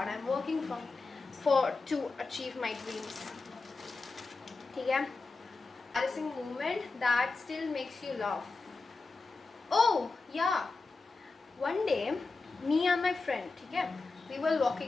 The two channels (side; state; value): right; quieter; 3.9 dB